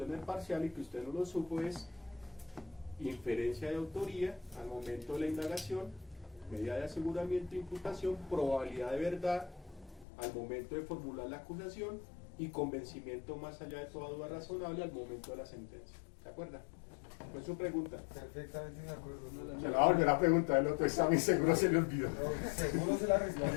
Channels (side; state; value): right; drops out; at 10.1 s